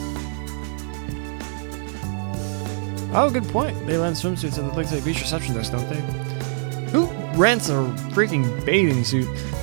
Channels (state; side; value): silent; left; digital silence